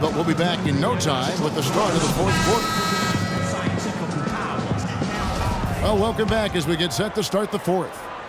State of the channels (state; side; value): identical; both; correlation 1.00